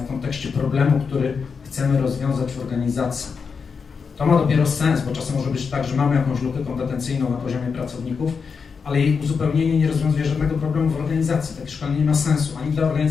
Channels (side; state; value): right; quieter; 5.6 dB